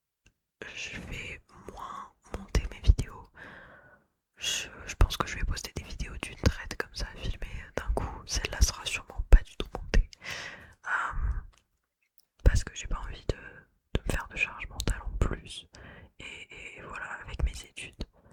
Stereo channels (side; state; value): both; identical; correlation 1.00